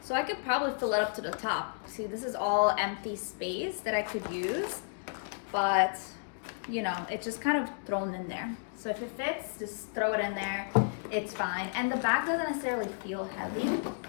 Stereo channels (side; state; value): right; silent; digital silence